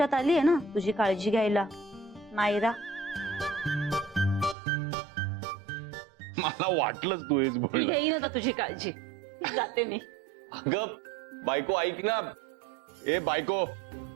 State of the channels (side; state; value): left; drops out; at 4.5 s